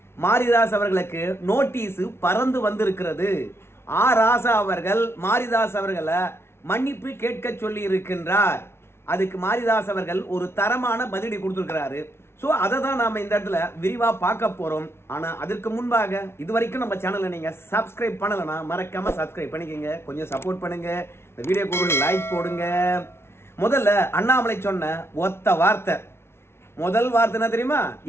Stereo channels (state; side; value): late; right; 0.12 ms